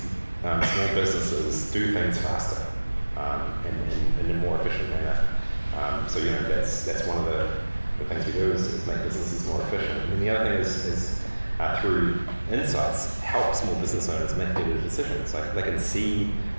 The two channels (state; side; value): inverted; both; correlation -1.00